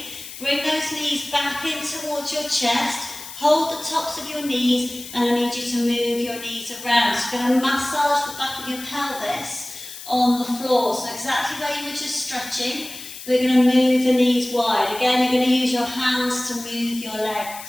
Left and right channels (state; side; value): noise; left; hiss, 13 dB below the sound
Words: Bring those knees back in towards your chest. Hold the tops of your knees, and I need you to move your knees around. So you're going to massage the back of your pelvis on the floor. So exactly where you were just stretching. We're going to move the knees wide. Again, you're going to use your hands to move your